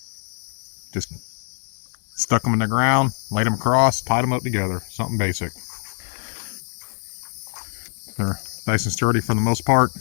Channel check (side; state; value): right; silent; digital silence